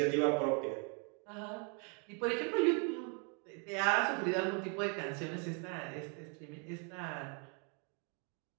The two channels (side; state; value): left; quieter; 37.7 dB